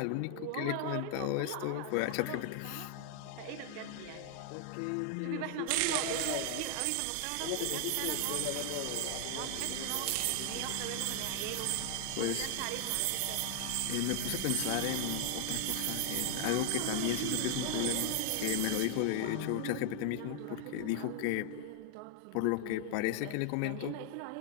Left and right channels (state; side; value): different; both; correlation 0.00